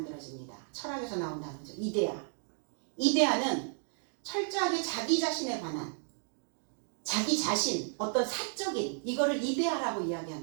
철학에서 나온 단어죠. 이데아. 이데아는 철저하게 자기 자신에 관한, 자기 자신, 어떤 사적인, 이거를 이데아라고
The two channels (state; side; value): silent; left; 55 dB below the other